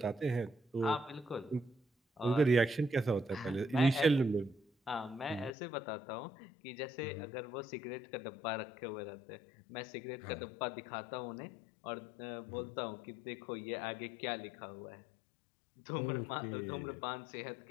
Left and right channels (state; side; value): drops out; right; at 5.5 s